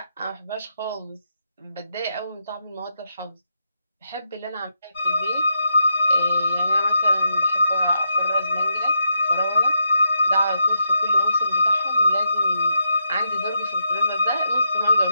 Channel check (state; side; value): inverted; both; correlation -0.82